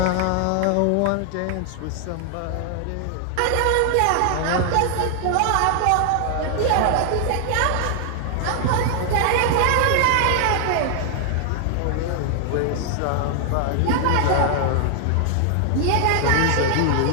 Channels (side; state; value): both; different; correlation 0.00